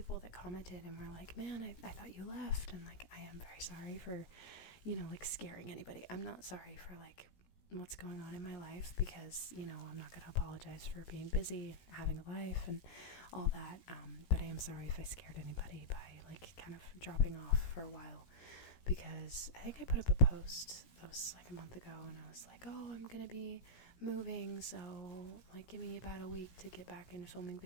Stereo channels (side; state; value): right; late; 17 ms